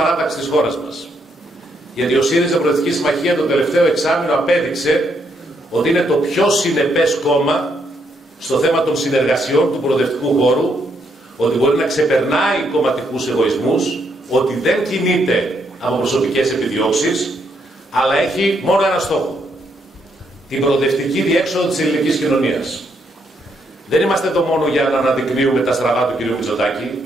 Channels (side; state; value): both; normal; correlation 0.75